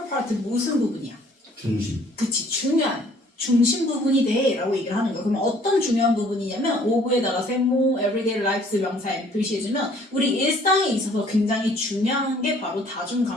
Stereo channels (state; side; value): normal; both; correlation 0.58